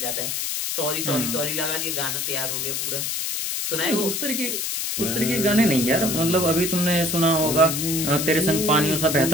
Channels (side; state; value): left; noise; hiss, 2 dB below the sound